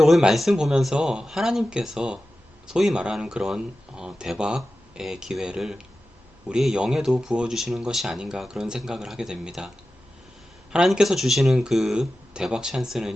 말씀 보면서 하나님께서 소위 말하는 그런 대박의 기회를 우리의 영에도 부어주시는 것이 아닌가, 그런 생각을 하게 됩니다. 하나님께서 주시는 그 대박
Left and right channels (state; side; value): normal; both; correlation 0.94